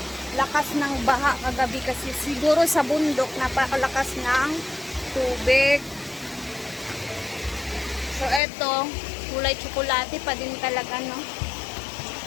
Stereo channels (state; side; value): drops out; right; at 8.4 s